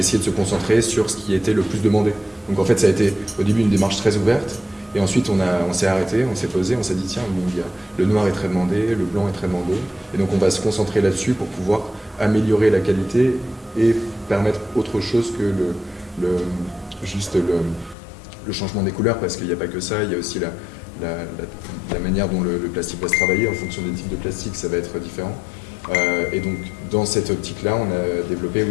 de se concentrer sur ce qui était le plus demandé. Donc en fait, ça a été au début une démarche très ouverte. Et ensuite, on s'est arrêté, on s'est posé, on s'est dit tiens, le noir est très demandé, le blanc est très demandé. Et donc on va se concentrer là-dessus pour pouvoir améliorer la qualité et permettre autre chose que le changement des couleurs, parce qu'il n'y a pas que ça, il y a aussi la manière dont le plastique va se travailler. En fonction des types de plastique, ça va être différent. Et donc dans cette optique-là, on a développé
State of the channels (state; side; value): drops out; right; at 17.9 s